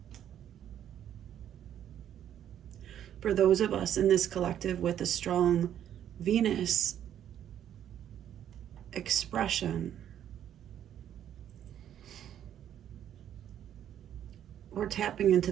For those of us in this collective with a strong Venus expression, we're tapping into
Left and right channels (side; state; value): left; quieter; 10.3 dB